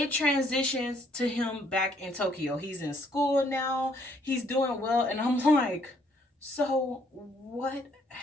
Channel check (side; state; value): both; normal; correlation 0.67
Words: transitions to him back in Tokyo. He's in school now, he's doing well, and I'm like, so what